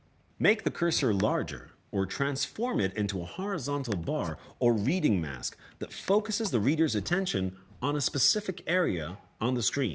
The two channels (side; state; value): both; identical; correlation 1.00